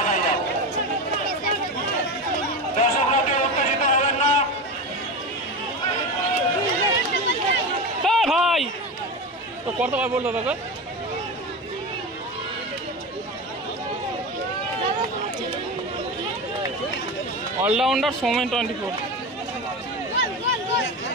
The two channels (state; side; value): normal; both; correlation 0.22